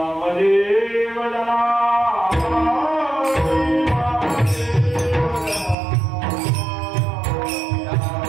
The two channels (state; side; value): drops out; left; at 5.8 s